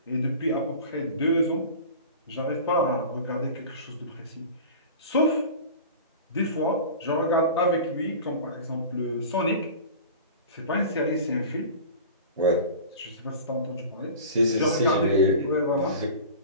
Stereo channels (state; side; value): inverted; both; correlation -0.36